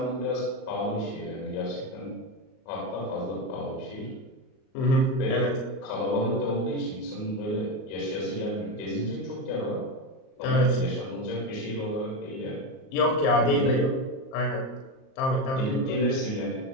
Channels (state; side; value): late; right; 38 ms